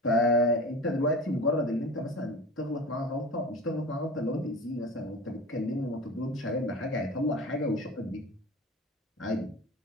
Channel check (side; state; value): both; normal; correlation 0.33